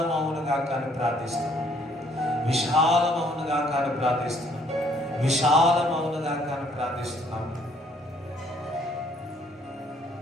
కానీ ప్రార్థిస్తున్నాం, విశాలమవునుగా కానీ ప్రార్థిస్తున్నాం, విశాలమవునుగా కానీ ప్రార్థిస్తున్నాం.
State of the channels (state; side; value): normal; both; correlation 0.64